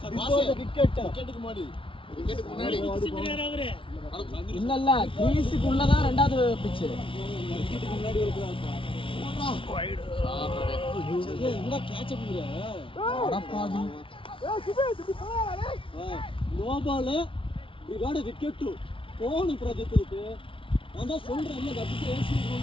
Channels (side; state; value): right; late; 0.25 ms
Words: Before the wicket. Wicket முன்னாடி. இல்ல இல்ல கிரீஸுக்கு உள்ளதான் ரெண்டாவது pitch. விக்கெட்டுக்கு முன்னாடி இருக்குதா? என்ன catch பண்ணுற? அடப்பாவி. No ball. We got a wicket too. Phone Pradeep இருக்கு. நான் தான் சொல்றேன் இல்ல கட்டி ஏசி